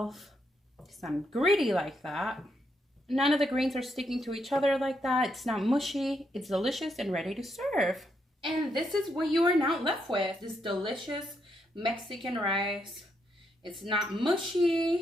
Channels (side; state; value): both; normal; correlation 0.78